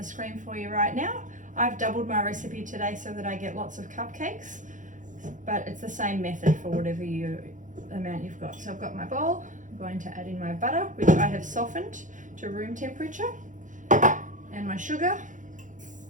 screen for you right now. I've doubled my recipe today so that I get lots of cupcakes, but it's the same method for whatever amount you've got. So I've got my bowl, I'm going to add in my butter, which I have softened to room temperature, and my sugar,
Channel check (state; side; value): late; left; 0.37 ms